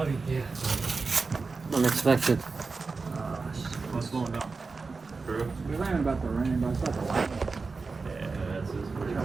Unexpected. We ran about the rain, but it's about the lightning. Try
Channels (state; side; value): quieter; left; 4.3 dB